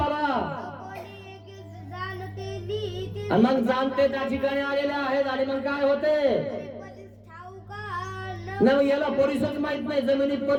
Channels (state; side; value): identical; both; correlation 1.00